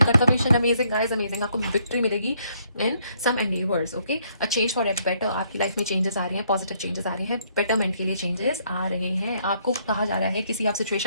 confirmation. Amazing guys, amazing. आपको विक्ट्री मिलेगी in some endeavours. Okay, a change for at better. आपकी लाइफ में चेंजेस आ रहे हैं, पॉजिटिव चेंजेस आ रहे हैं, बेटरमेंट के लिए चेंजेस आ रहे हैं। आपको कहा जा रहा है किसी आप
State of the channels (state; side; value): inverted; both; correlation -0.69